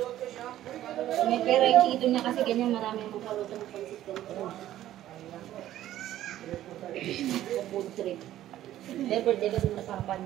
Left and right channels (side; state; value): left; quieter; 13.1 dB